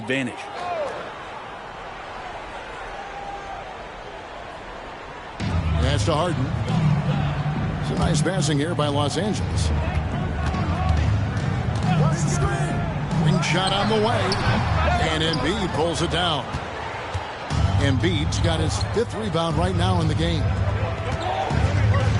Pass to Harden. Some nice passing here by Los Angeles. Ring shot on the way. And Embiid pulls it down. Embiid's got his 5th rebound right now in the game.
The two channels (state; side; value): identical; both; correlation 1.00